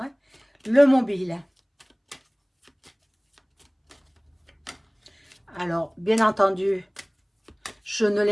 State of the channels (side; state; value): both; identical; correlation 1.00